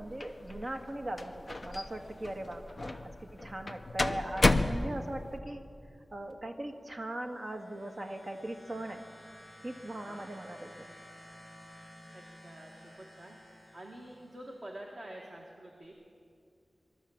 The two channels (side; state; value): both; normal; correlation 0.96